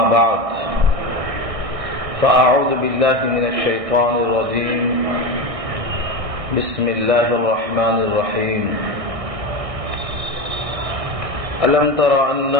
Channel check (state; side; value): late; left; 1.6 ms